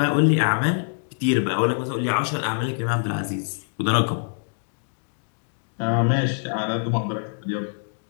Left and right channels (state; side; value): silent; right; digital silence